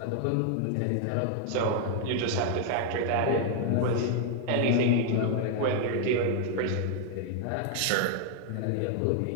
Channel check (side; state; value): both; different; correlation 0.00